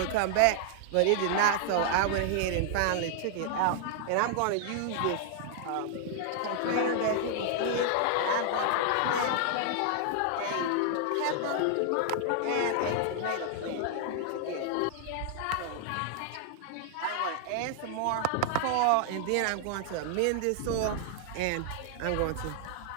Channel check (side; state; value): both; different; correlation 0.00